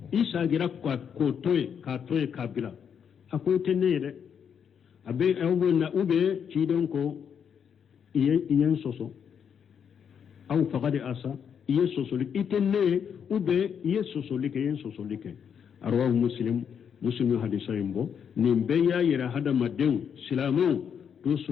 إيسا غير كاتوي كابلا أكو تنيره أبي أوبنا أوبي تيرن كو إيه سوسو أو فقد أسى إيه سوسو لك إتنيه أوبي إيه سوسو لك أرواه مسلم hadisa yimbo nin be ya yira hada maden silamu to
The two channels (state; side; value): quieter; right; 7.6 dB